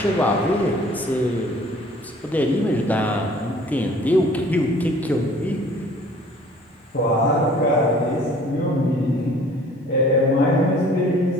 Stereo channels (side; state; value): both; normal; correlation 0.52